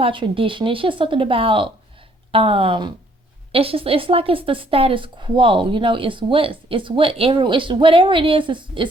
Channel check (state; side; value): normal; both; correlation 0.65